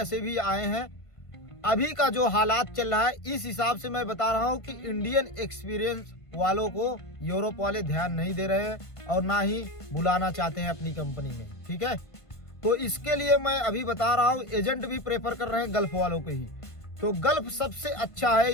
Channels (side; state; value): right; late; 1.5 ms